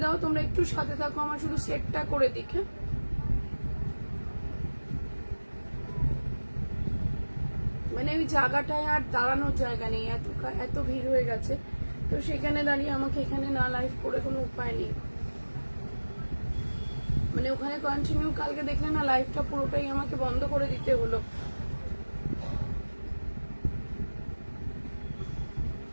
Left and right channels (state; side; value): inverted; both; correlation -1.00